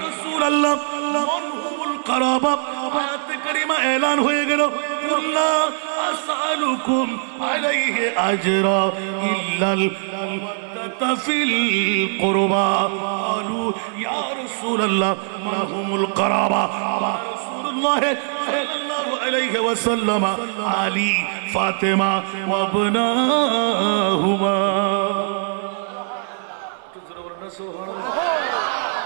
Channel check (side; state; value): left; silent; digital silence